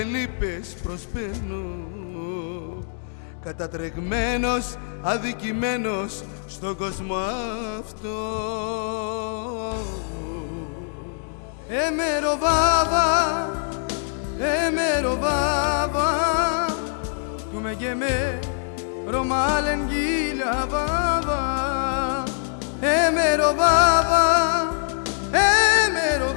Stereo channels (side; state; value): right; silent; digital silence